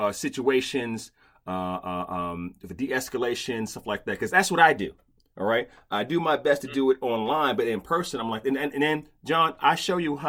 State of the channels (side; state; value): both; identical; correlation 1.00